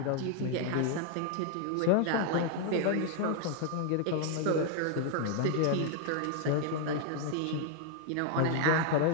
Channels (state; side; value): different; both; correlation 0.00